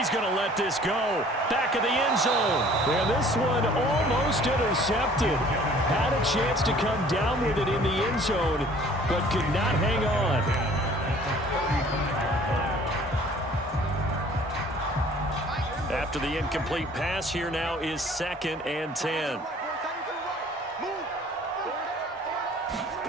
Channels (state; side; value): normal; both; correlation 0.53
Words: going to let this go. Back of the end zone. And this one almost intercepted. Had a chance to come down with it in the end zone, but could not hang on. After the incomplete pass, here now is 2nd and 10.